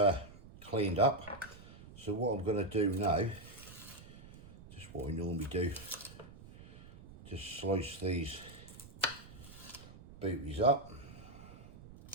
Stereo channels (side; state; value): right; noise; rumble, 17 dB below the sound